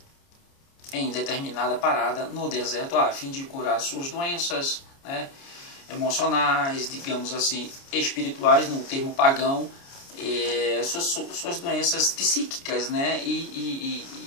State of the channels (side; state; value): right; late; 29 ms